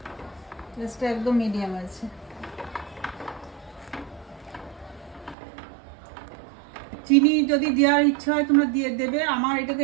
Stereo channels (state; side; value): drops out; left; at 5.4 s